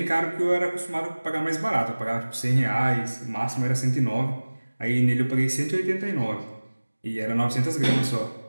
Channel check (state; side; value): inverted; both; correlation -1.00